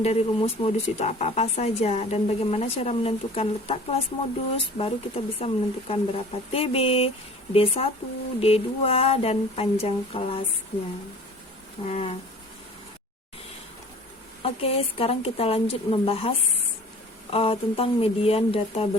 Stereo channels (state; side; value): normal; both; correlation 0.45